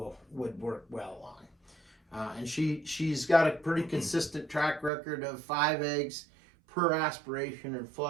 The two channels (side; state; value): left; drops out; at 4.9 s